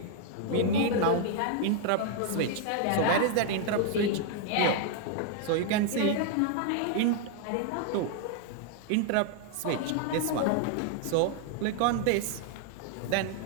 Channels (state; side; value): different; both; correlation 0.00